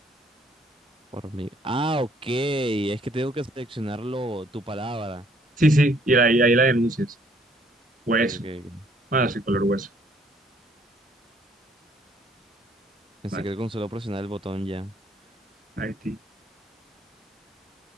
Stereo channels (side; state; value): both; normal; correlation 0.64